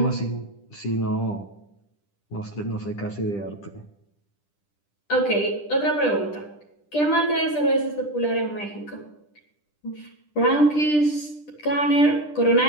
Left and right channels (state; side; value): late; right; 10 ms